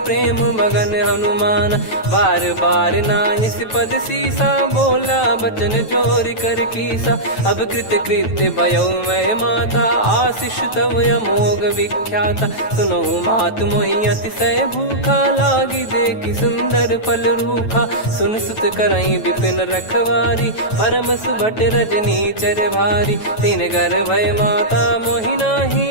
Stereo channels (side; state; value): right; late; 9.2 ms